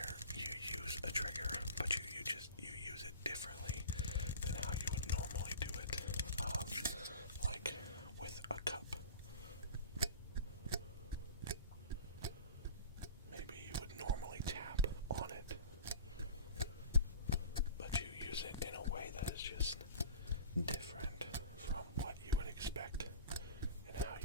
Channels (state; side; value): inverted; both; correlation -0.38